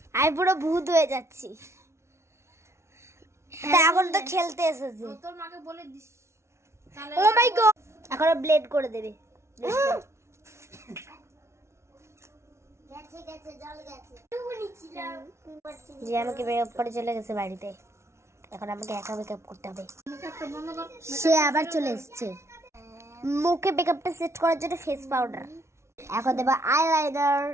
আমি পুরো ভূত হয়ে যাচ্ছি। এখন তো খেলতে এসেছি। তোর মাকে বলে দিস। ও মাই গড, এখন ব্লেড করে দেবে। যে আমাকে মেকআপ করে চলে গেছে বাড়িতে, এখন আমাকে একা মেকআপ করতে হবে। সে আবার চলে এসেছে। মুখে মেকআপটা সেট করার জন্য ফেস পাউডার, এখন দেবো আইলাইনার,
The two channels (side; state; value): left; late; 0.13 ms